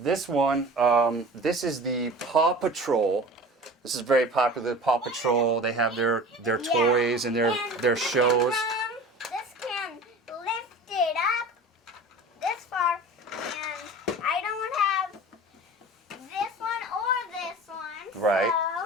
is the Paw Patrol. This is very popular. Paw Patrol. They have their toys and their shows. This can lift it up this far, and I don't have this one or this one. Right,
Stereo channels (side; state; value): both; normal; correlation 0.38